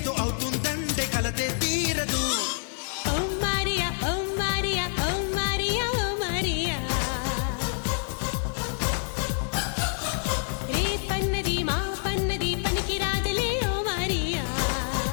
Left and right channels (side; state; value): right; silent; 60 dB below the other